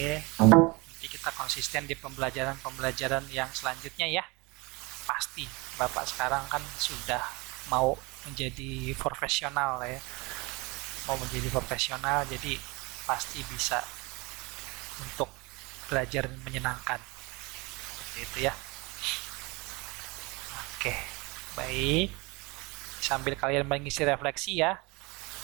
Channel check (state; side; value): quieter; left; 25.9 dB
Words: Nanti kita konsisten di pembelajaran-pembelajaran yang selanjutnya ya. Pasti Bapak sekarang kan sudah mau menjadi profesional ya, mau menjadi profesional, jadi pasti bisa untuk belajar menyenangkan seperti itu ya. Oke, baik, sambil kalian mengisi refleksi ya.